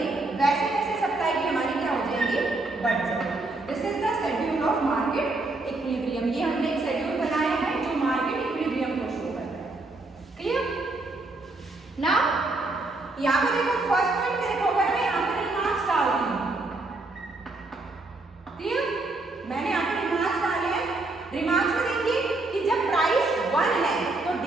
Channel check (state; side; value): quieter; left; 3.1 dB